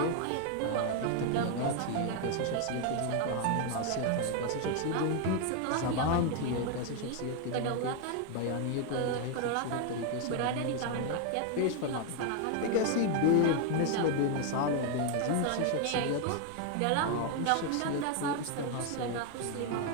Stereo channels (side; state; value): both; different; correlation 0.01